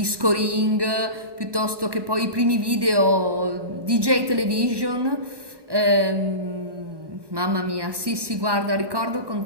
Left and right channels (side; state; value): left; late; 1.2 ms